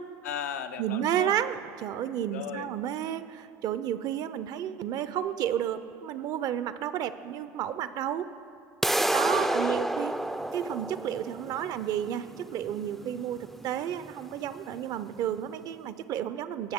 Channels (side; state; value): left; quieter; 5.9 dB